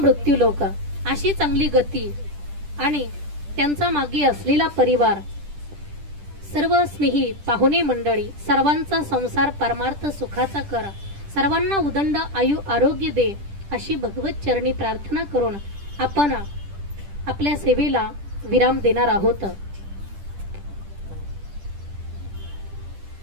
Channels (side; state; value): left; late; 10 ms